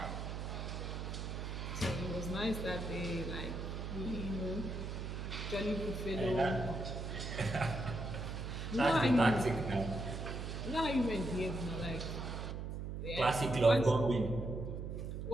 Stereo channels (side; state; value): right; noise; hum, 5 dB below the sound